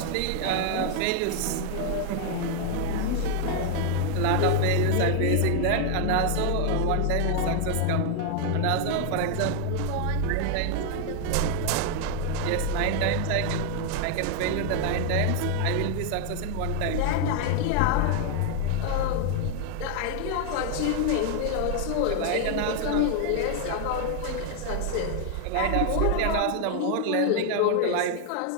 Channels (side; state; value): both; different; correlation 0.00